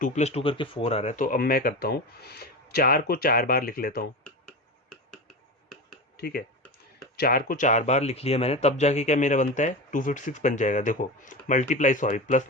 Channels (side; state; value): both; normal; correlation 0.24